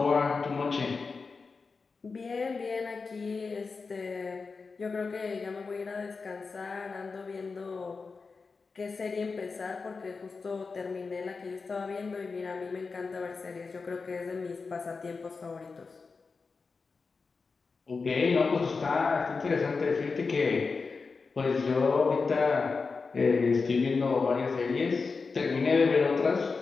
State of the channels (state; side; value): quieter; right; 4.5 dB